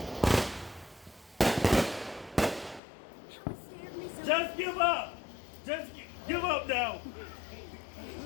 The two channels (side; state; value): right; drops out; at 2.8 s